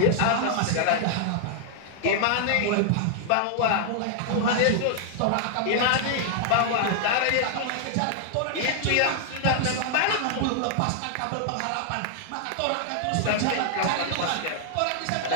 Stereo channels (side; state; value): both; different; correlation -0.01